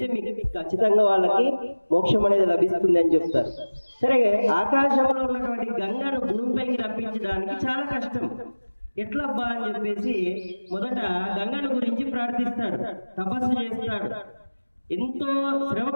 మీకు ఖచ్చితంగా వాళ్ళకి మోక్షం అనేది లభిస్తుంది అని చెప్తారు. సరే, ఆకాశంలో ఉన్నటువంటి గంగను భూమిపైకి రప్పించడానికి చాలా కష్టం. ఎట్లబ్బా అని చెప్పేసి మొదట గంగను గురించి ప్రార్థిస్తాడు, తపస్సు చేస్తాడు. ఎంతో శ్రమ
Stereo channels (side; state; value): both; inverted; correlation -1.00